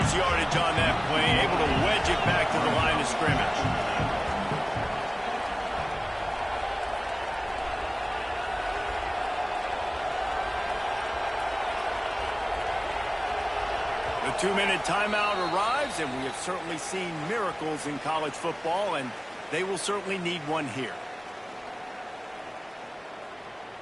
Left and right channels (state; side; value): identical; both; correlation 1.00